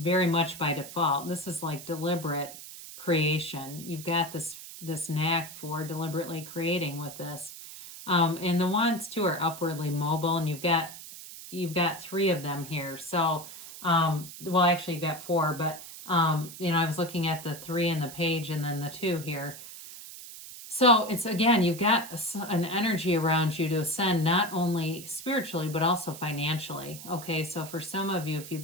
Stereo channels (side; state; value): right; noise; hiss, 13 dB below the sound